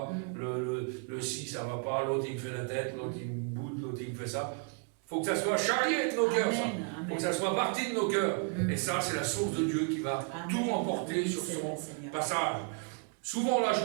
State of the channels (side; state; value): left; quieter; 39.8 dB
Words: le ci ça va pas, l'autre il me fait la tête, l'autre il me boude, l'autre il me fait ça. Il faut que ça soit charrié de nos cœurs, ça. Il faut que ça soit parti de nos cœurs. Et ça, c'est la source de Dieu qui va tout emporter sur son passage. Souvent, la